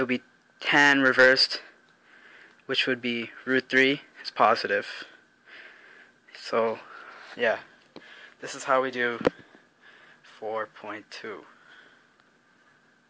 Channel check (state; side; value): identical; both; correlation 1.00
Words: would be tan reversed, which would be √3 is positive. So yeah, this is how we do 4.2.